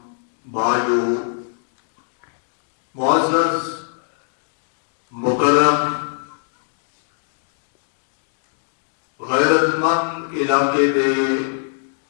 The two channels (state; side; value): silent; right; 64 dB below the other